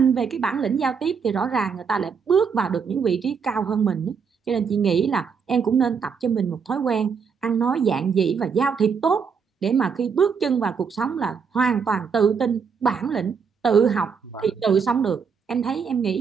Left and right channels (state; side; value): quieter; left; 6.1 dB